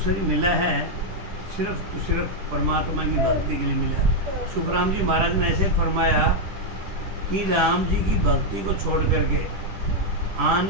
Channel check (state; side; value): late; left; 10 ms